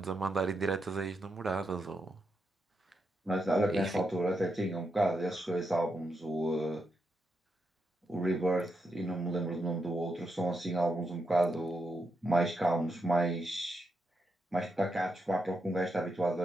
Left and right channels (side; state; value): both; normal; correlation 0.83